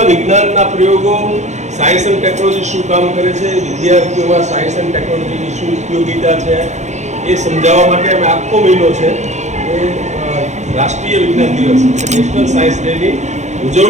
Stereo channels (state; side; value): late; left; 0.34 ms